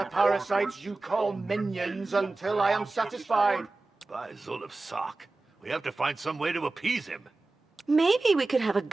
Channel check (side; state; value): left; quieter; 3.3 dB